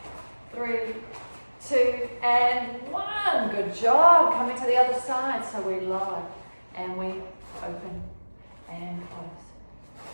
3, 2, and 1. Good job. Coming to the other side. So we lower and we open and close.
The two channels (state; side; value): inverted; both; correlation -1.00